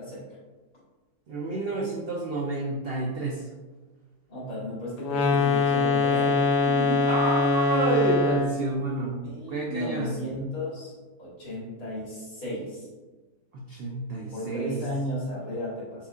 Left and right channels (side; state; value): both; normal; correlation 0.23